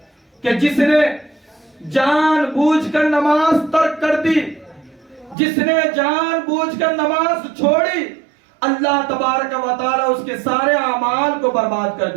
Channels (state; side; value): drops out; left; at 5.4 s